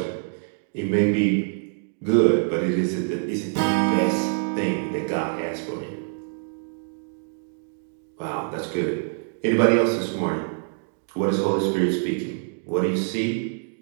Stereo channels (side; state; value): left; silent; digital silence